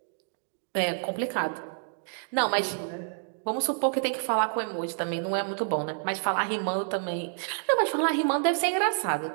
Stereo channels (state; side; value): silent; left; digital silence